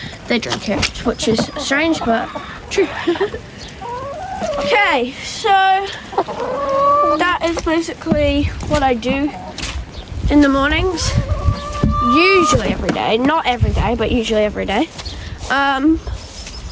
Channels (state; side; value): identical; both; correlation 1.00